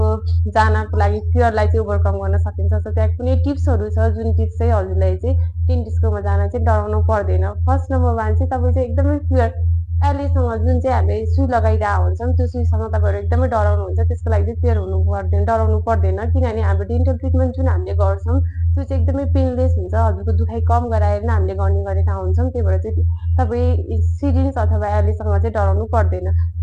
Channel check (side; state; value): both; identical; correlation 1.00